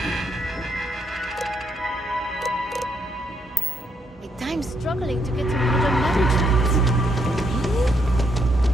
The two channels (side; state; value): both; normal; correlation 0.75